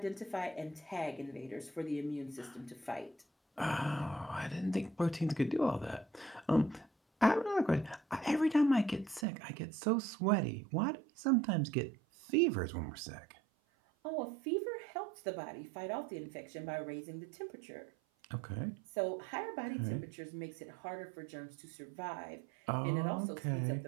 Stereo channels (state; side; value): drops out; left; at 9.2 s